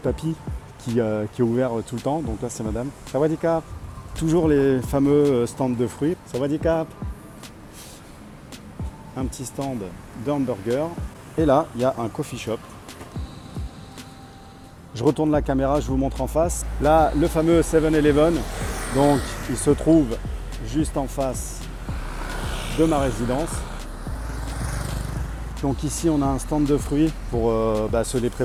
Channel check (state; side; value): identical; both; correlation 1.00